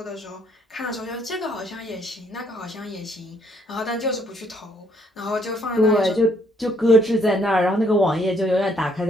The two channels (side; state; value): both; normal; correlation 0.68